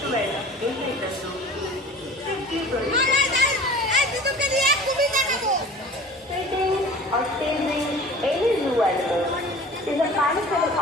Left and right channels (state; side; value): normal; both; correlation 0.42